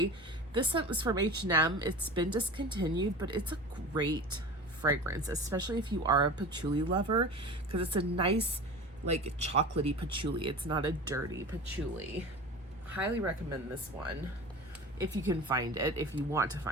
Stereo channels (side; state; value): both; normal; correlation 0.34